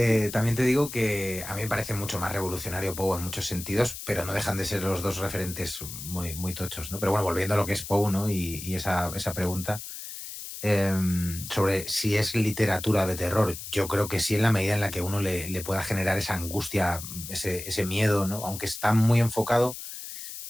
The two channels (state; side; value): noise; left; hiss, 10 dB below the sound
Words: también te digo que a mí me parece mucho más revolucionario Poe en muchos sentidos, pero no dejan de ser los dos referentes muy, muy tochos, ¿no? Pero bueno, volviendo a lo que es Poe, ¿no? Y esa pregunta sobre si es literatura de terror, yo creo que sí, en la medida en la que uno le pueda generar esa angustia, ese miedo, ¿no? Aunque está muy enfocado